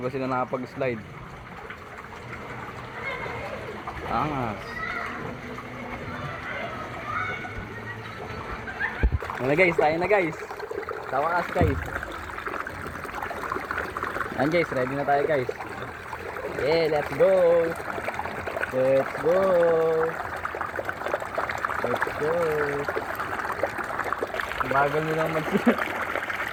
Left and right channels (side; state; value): both; identical; correlation 1.00